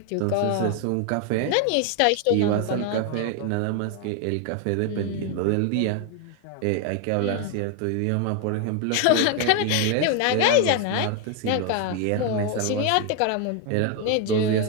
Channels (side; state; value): both; different; correlation 0.01